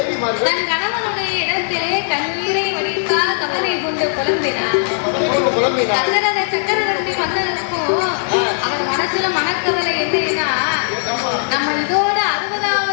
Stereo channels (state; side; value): silent; right; digital silence